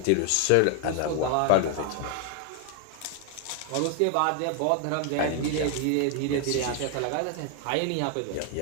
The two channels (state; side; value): different; both; correlation 0.00